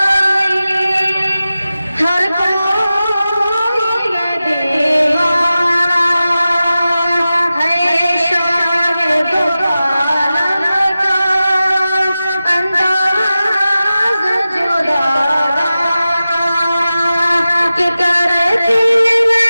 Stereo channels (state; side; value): inverted; both; correlation -0.94